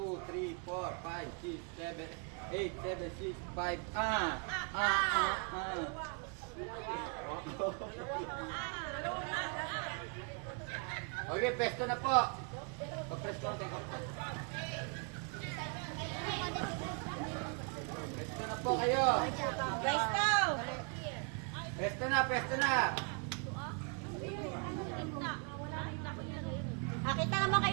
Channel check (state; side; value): quieter; left; 37.7 dB